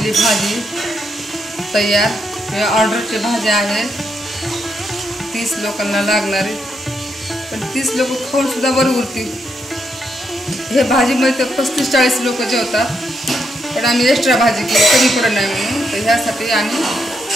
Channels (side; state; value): both; normal; correlation 0.80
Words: भाजी तयार. हे ऑर्डरची भाज्या आहेत, 30 लोकांना लागणारी. पण 30 लोक खाऊन सुद्धा बरं उरतील. हे भाजीमध्ये तर 35-40 लोक जेवतात. पण आम्ही एक्स्ट्रा भाजी केली कमी पडत नाही म्हणून. तर ह्यासाठी आम्ही